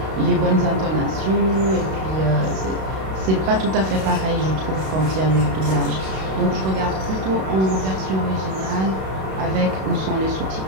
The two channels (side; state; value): left; late; 31 ms